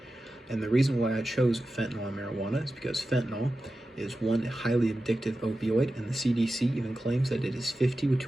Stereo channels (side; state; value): both; normal; correlation 0.93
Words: And the reason why I chose fentanyl and marijuana is because fentanyl is one highly addictive opioid, and the CDC even claims that it is 50